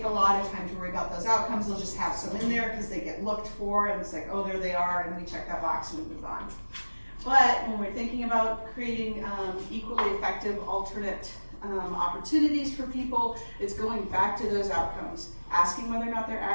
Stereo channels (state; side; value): inverted; both; correlation -1.00